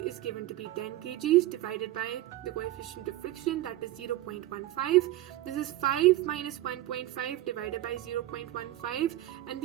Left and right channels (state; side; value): quieter; left; 15.6 dB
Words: is given to be 10 kgs divided by the coefficient of friction, that is 0.15. This is 5 minus 1.5 divided by 0.15, and